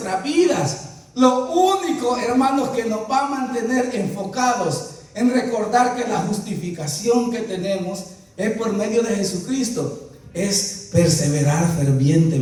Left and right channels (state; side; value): identical; both; correlation 1.00